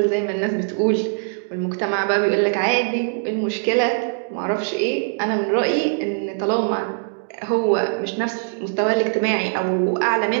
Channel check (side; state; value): left; silent; digital silence